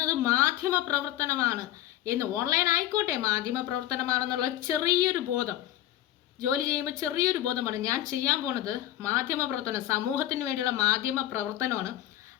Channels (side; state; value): right; quieter; 13.5 dB